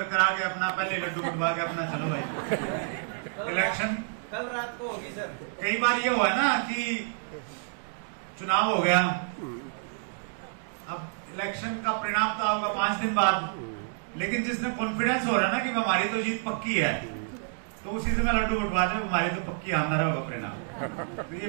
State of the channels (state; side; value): silent; left; digital silence